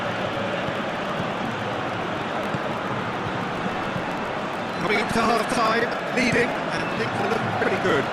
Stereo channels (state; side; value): identical; both; correlation 1.00